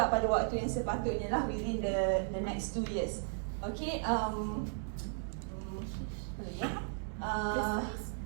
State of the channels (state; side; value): silent; left; digital silence